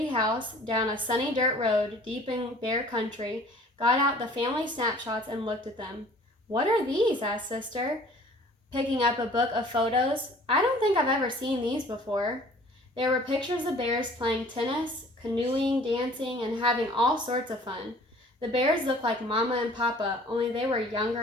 house down a sunny dirt road deep in bear country got out the family snapshots and looked at them. "What are these?" asked Sister, picking up a book of photos. "I don't think I've ever seen these before." There were pictures of bears playing tennis, canoeing, dancing, and having all sorts of fun. The bears looked like Mama and Papa, only they were younger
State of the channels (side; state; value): both; normal; correlation 0.51